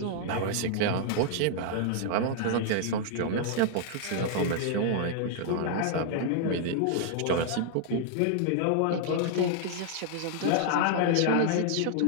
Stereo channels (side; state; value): both; different; correlation 0.00